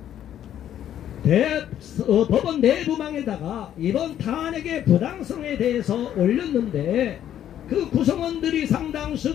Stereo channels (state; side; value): quieter; right; 10.8 dB